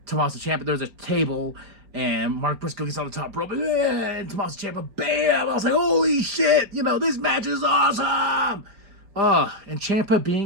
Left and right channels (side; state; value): left; late; 5.0 ms